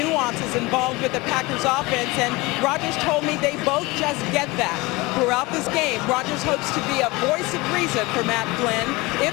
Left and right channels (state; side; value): quieter; right; 22.6 dB